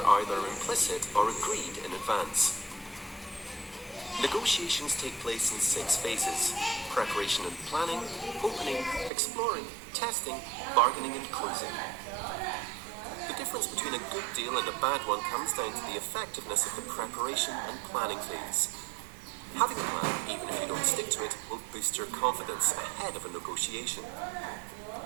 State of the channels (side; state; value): left; drops out; at 9.1 s